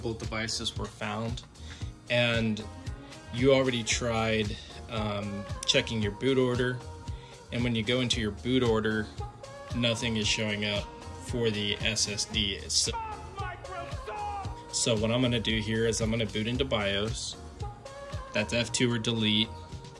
devices were found, and you already tried checking your boot order, and when you go into your boot order, nothing is showing up for the SSD itself. So what I'm going to do here is I'm going to boot into BIOS. That's F2 or delete.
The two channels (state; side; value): identical; both; correlation 1.00